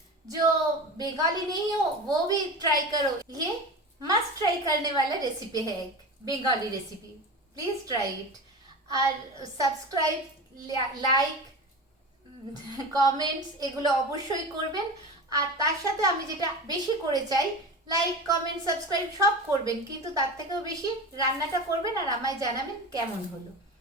जो बंगाली नहीं हो वो भी ट्राई करो, ये मस्ट ट्राई करने वाला रेसिपी है, एक Bengali recipe, please try it. আর সাবস্ক্রাইব, লাইক, কমেন্টস এগুলো অবশ্যই করবেন। আর তার সাথে আমি যেটা বেশি করে চাই, লাইক কমেন্ট সাবস্ক্রাইব সব করবেন, কিন্তু তার থেকেও বেশি রান্নাটা করবেন আর আমায় জানাবেন কেমন হলো।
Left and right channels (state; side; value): normal; both; correlation 0.29